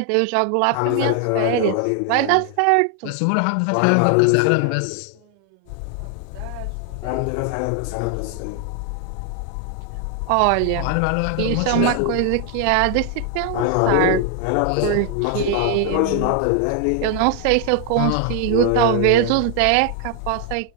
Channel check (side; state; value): both; different; correlation 0.00